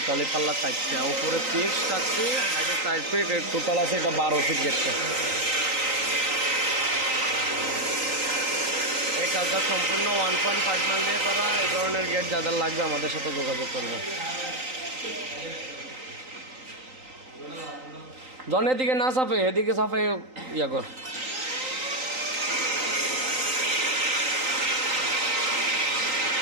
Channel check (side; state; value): left; late; 3.9 ms